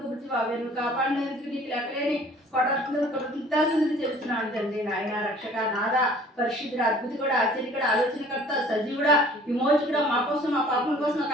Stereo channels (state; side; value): normal; both; correlation 0.51